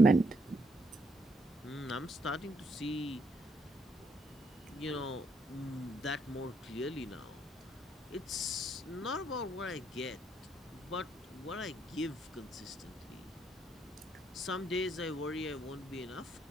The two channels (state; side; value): normal; both; correlation 0.73